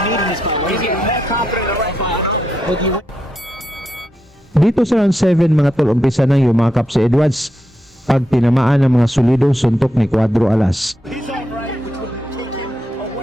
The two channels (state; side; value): normal; both; correlation 0.83